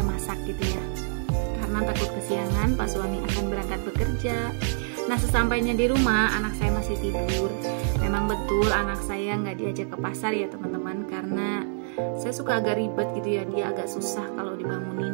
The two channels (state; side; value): silent; left; digital silence